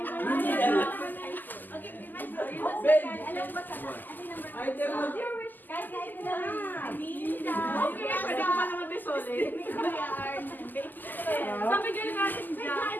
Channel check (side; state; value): right; late; 0.087 ms